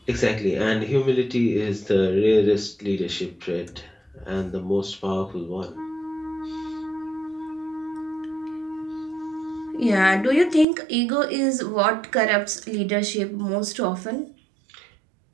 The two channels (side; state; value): left; drops out; at 10.7 s